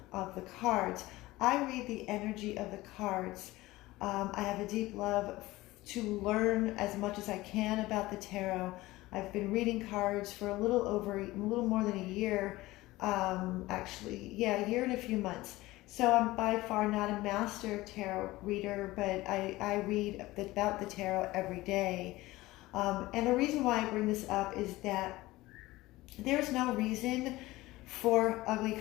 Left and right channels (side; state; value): right; quieter; 18.7 dB